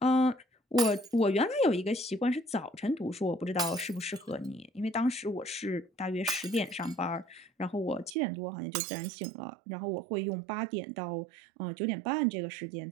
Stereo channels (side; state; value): left; drops out; at 8.2 s